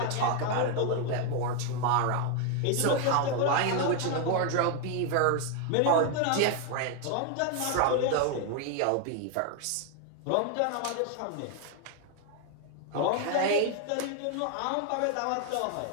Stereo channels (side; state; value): both; different; correlation 0.01